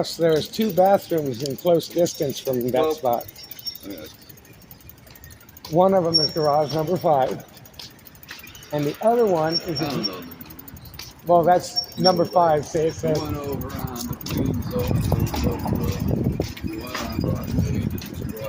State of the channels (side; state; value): both; identical; correlation 1.00